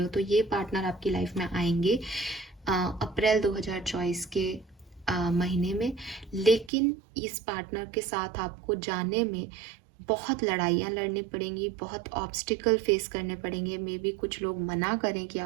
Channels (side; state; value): left; drops out; at 6.7 s